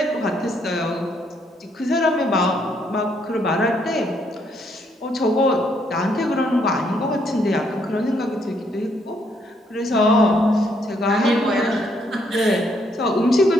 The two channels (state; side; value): normal; both; correlation 0.72